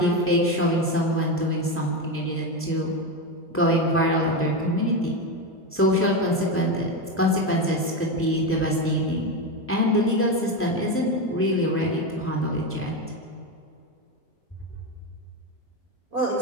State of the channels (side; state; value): both; normal; correlation 0.14